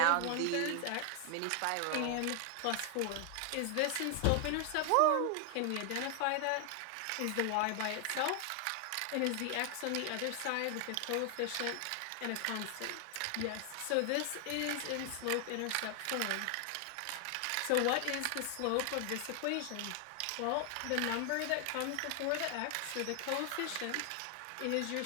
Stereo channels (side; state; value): both; different; correlation 0.00